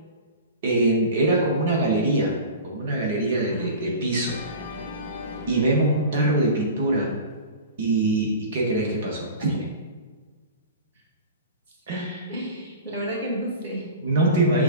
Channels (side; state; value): both; inverted; correlation -0.36